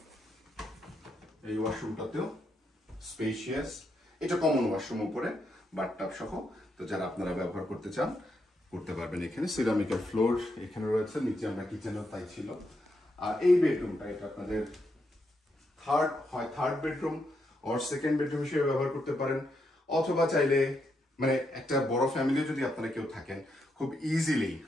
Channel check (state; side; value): normal; both; correlation 0.81